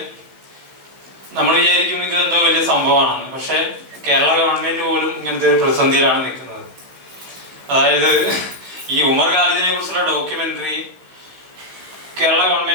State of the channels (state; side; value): late; left; 15 ms